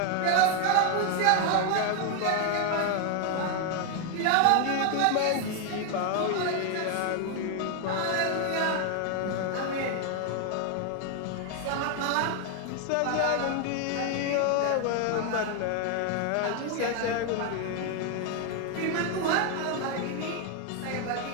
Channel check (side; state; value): both; different; correlation 0.00